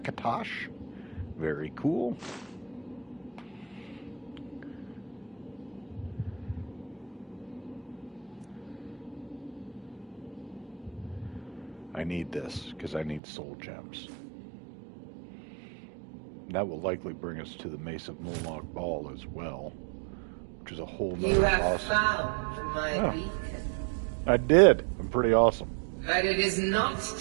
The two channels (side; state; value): left; drops out; at 13.2 s